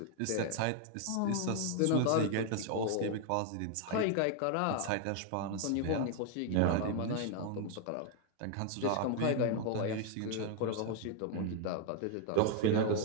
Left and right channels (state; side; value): different; both; correlation 0.00